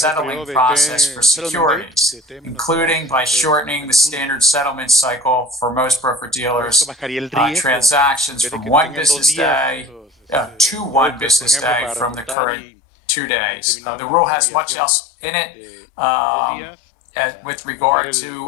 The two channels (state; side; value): drops out; right; at 12.4 s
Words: process for securities, including by shortening the standard settlement cycle for most broker-dealers, transactions from 1 business day to 1 business day from the current 2 days. The rule has much else in it. With regard to